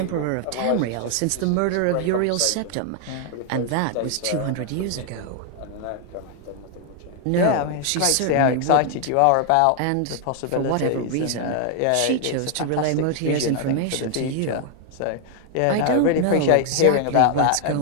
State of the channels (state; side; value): different; both; correlation 0.00